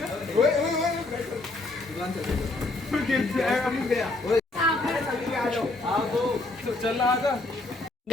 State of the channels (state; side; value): quieter; right; 3.0 dB